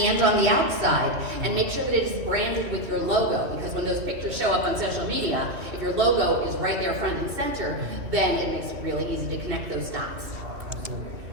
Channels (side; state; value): left; late; 2.7 ms